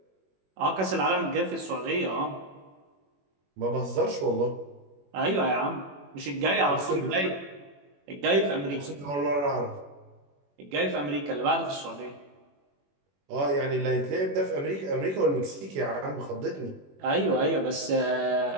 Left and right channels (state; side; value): late; left; 21 ms